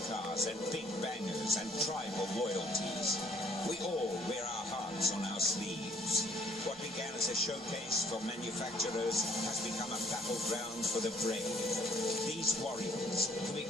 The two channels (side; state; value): both; normal; correlation 0.61